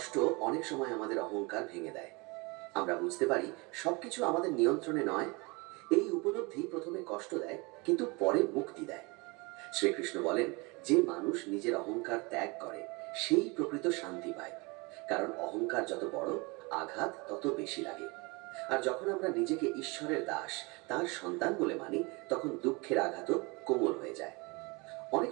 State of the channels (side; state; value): left; quieter; 27.4 dB